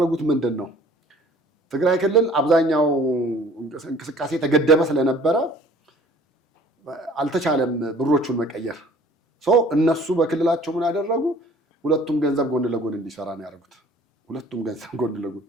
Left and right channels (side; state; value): both; normal; correlation 0.52